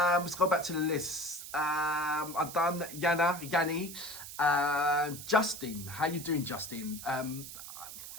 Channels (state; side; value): noise; right; hiss, 11 dB below the sound